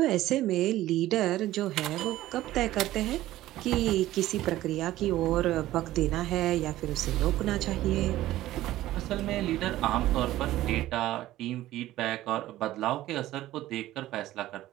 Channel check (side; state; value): left; quieter; 15.1 dB